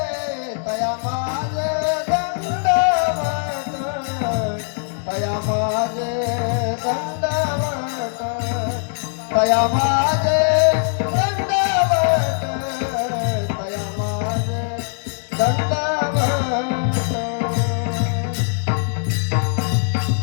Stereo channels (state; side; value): silent; right; digital silence